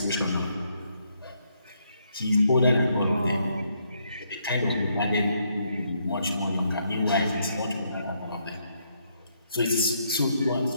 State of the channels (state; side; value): inverted; both; correlation -0.74